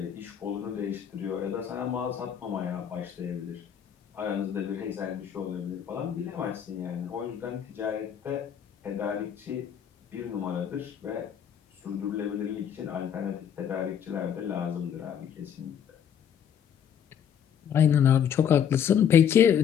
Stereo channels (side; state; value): right; quieter; 8.6 dB